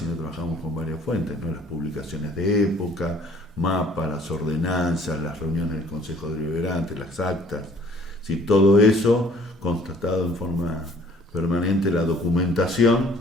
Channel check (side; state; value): both; normal; correlation 0.56